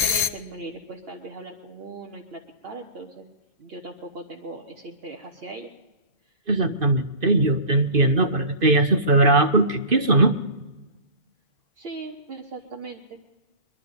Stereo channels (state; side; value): late; left; 2.5 ms